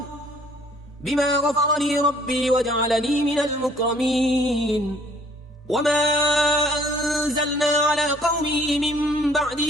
بما غفر لي ربي وجعلني من المكرمين وما أنزلنا على قومه من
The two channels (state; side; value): normal; both; correlation 0.59